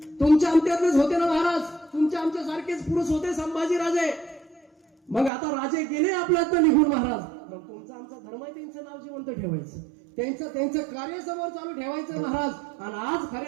तुमच्या आमच्यातलेच होते ना महाराज, तुमच्या आमच्या सारखेच पुरुष होते संभाजी राजे. मग आता राजे गेले आपल्यात निघून महाराज, मग तुमचा आमचा धर्म आहे, त्यांचं नाव जिवंत ठेवायचं, त्यांचं कार्य समोर चालू ठेवायचं महाराज. आणि आज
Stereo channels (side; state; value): left; drops out; at 5.3 s